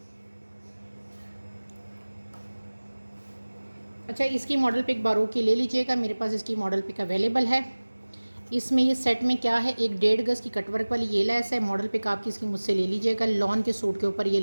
अच्छा, इसकी मॉडल पिक बारोक की ले लीजिएगा, मेरे पास इसकी मॉडल पिक अवेलेबल है। इसमें ये सेट में क्या है, एक 1.5 गज़ की कटवर्क वाली ये लेस है। मॉडल पिक आपकी इसकी मुझसे ले लीजिएगा। लॉन के सूट के ऊपर ये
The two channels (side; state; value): both; inverted; correlation -1.00